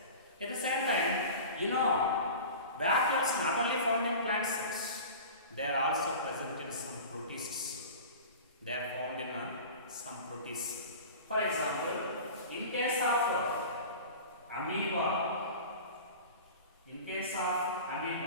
At the same time, vacuoles not only found in plant cells, they are also present in some protists. They are found in some protists. For example, in case of amoeba,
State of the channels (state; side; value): inverted; both; correlation -0.36